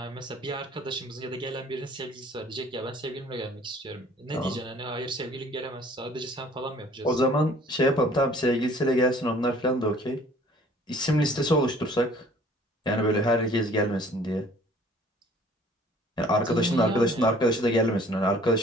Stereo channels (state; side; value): normal; both; correlation 0.54